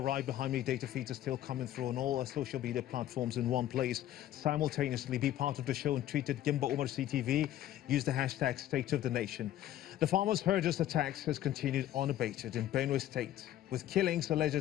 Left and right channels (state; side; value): quieter; right; 12.7 dB